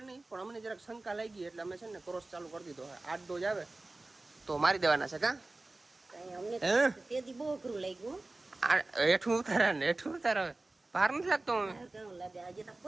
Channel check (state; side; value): quieter; left; 3.0 dB